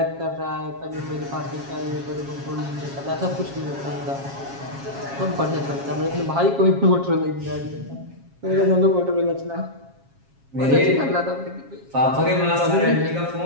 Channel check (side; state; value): left; late; 7.3 ms